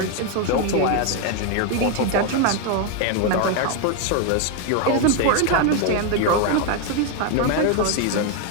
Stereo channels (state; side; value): different; both; correlation 0.01